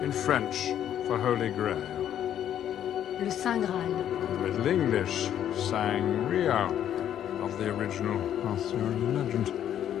in French for Holy Grail, Le Saint Graal. the Middle English Sangria of the original Arthurian legend.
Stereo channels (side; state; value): right; quieter; 10.4 dB